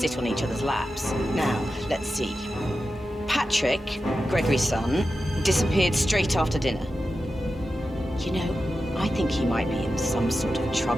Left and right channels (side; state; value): both; normal; correlation 0.91